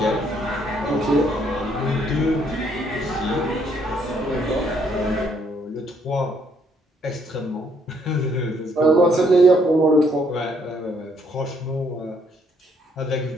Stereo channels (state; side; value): normal; both; correlation 0.69